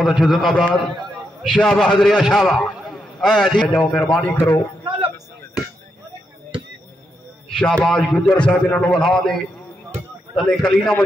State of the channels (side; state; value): both; normal; correlation 0.82